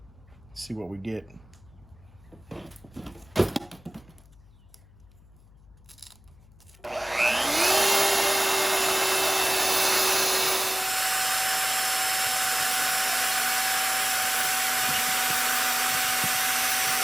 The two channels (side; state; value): left; noise; hum, 26 dB below the sound